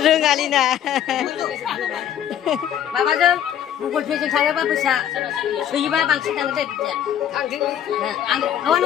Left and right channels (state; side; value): quieter; right; 10.2 dB